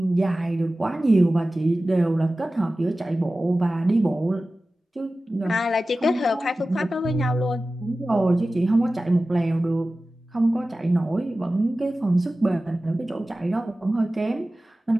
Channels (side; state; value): both; normal; correlation 0.96